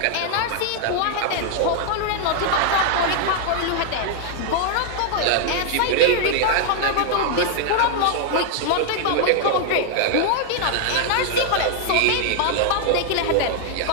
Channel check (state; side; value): different; both; correlation 0.00